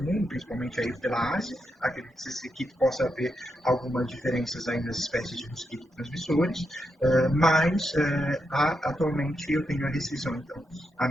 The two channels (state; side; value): normal; both; correlation 0.84